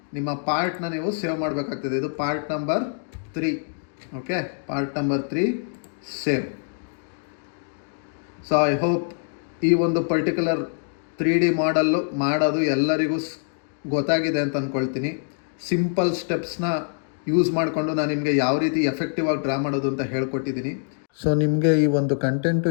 ನಿಮ್ಮ ಪಾರ್ಟ್ನ ನೀವು ಸೇವ್ ಮಾಡಬೇಕಾಗ್ತದೆ. ಇದು part number 3. Okay, part number 3 save. So I hope ಈ ಒಂದು ಪರ್ಟಿಕ್ಯುಲರ್ 3D ಮಾಡಲ್ಲು ಮಾಡೋದು ಎಲ್ಲರಿಗೂ ಗೊತ್ತಾಗಿದೆ ಅಂತ ಅಂದ್ಕೊಳ್ತೀನಿ. ಸಿಂಪಲ್ ಸ್ಟೆಪ್ಸ್ನ ಯೂಸ್ ಮಾಡಿಕೊಂಡು ನಾನು ನಿಮಗೆ ಯಾವ ರೀತಿ ಎಫೆಕ್ಟಿವ್ ಆಗಿ ಡ್ರಾ ಮಾಡೋದು ಅಂತ ಹೇಳ್ಕೊಟ್ಟಿದ್ದೀನಿ. ಸೊ ನಿಮಗೆ ಈ ಒಂದು ಕಂಟೆಂಟು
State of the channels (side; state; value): right; silent; 61 dB below the other